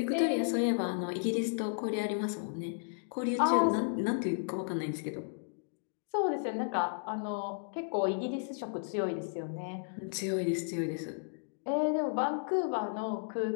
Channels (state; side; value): silent; right; digital silence